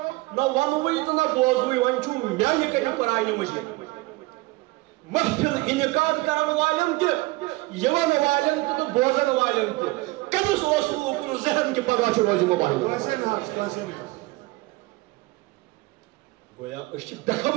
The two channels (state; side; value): quieter; left; 21.5 dB